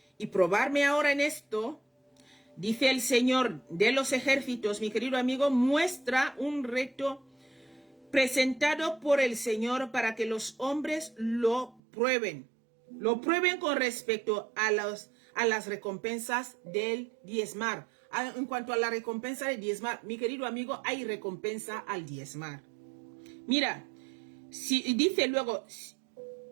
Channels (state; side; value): drops out; left; at 11.8 s